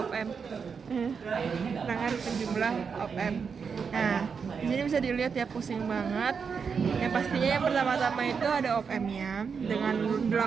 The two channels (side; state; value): left; quieter; 6.0 dB